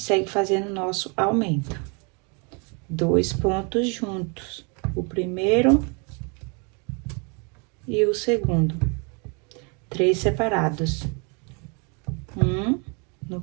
fazendo nosso aumento. 2 pontos juntos. O primeiro e o segundo. 3 separados. No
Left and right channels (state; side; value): quieter; left; 34.1 dB